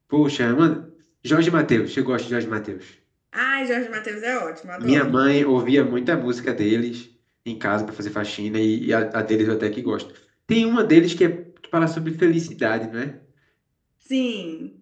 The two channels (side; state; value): both; identical; correlation 1.00